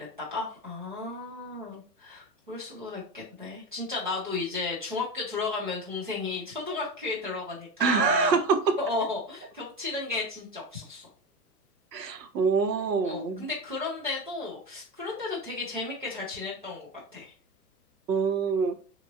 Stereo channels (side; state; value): both; normal; correlation 0.24